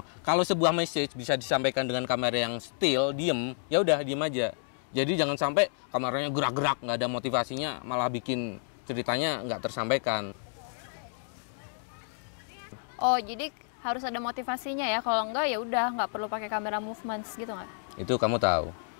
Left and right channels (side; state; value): right; silent; digital silence